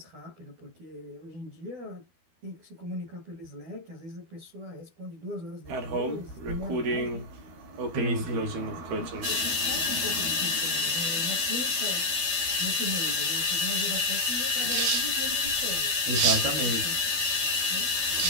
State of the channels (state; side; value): late; left; 12 ms